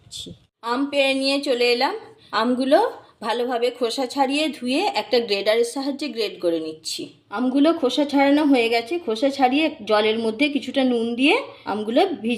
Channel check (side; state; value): both; identical; correlation 1.00